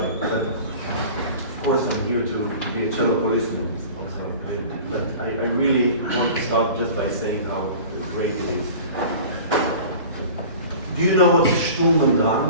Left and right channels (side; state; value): both; inverted; correlation -0.40